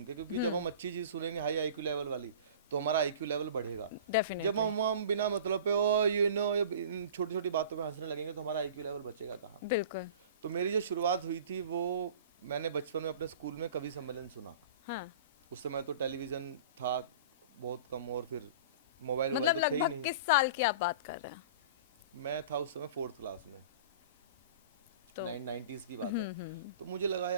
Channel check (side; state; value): both; inverted; correlation -0.40